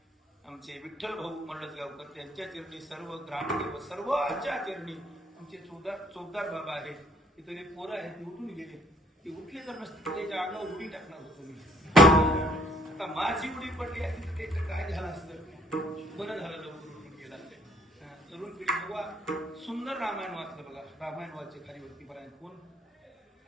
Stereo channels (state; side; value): normal; both; correlation 0.62